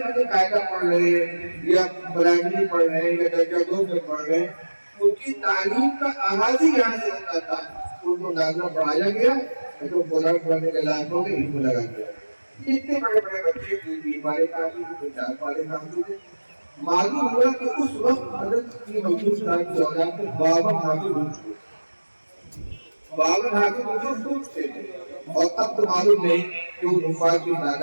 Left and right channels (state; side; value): inverted; both; correlation -1.00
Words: مجھے قاعدہ پڑھ رہے ہیں یا پرائمری پڑھ رہے ہیں یا درجہ 2 میں پڑھ رہے ہیں. ان کی تعلیم کا آغاز ہی یہاں سے ہوتا تھا. ان کو نازلہ پڑھایا گیا تو قرآن پڑھنے کے لائق ہو کے علم لگا دیا. اتنے بڑے بڑے بچے 3 پارے کافی تھے، 4 پارے کافی تھے. معلوم ہوا کہ اس وقت حضرت کی محمود صاحب کی اولاد میں 52 حافظ ہو چکے. 52 حافظ پوچھتے تھے اور اب تو معلوم نہیں کہ وہ حفاظ کی